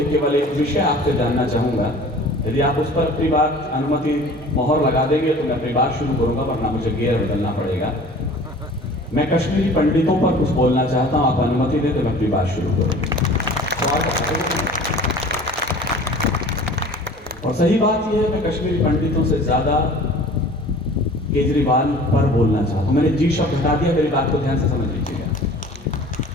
केवल एक विषय आपसे जानना चाहूँगा। यदि आप उस पर अपनी बात अनुमति मोहर लगा देंगे तो मैं अपनी बात शुरू करूंगा, वरना मुझे गियर बदलना पड़ेगा। मैं कश्मीरी पंडितों पर कुछ बोलना चाहता हूं, आप अनुमति दें तो मैं अपनी बात शुरू करूंगा। और सही बात यह है, मैं कश्मीरी पंडितों से ज्यादा केजरीवाल पर बोलना चाहता हूं। मैंने जी शब्द हटा दिया, मेरी बात को ध्यान से समझ लीजिएगा।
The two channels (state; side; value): normal; both; correlation 0.45